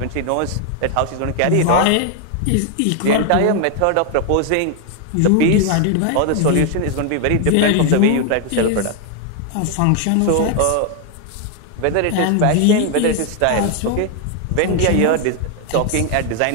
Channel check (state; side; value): different; both; correlation 0.00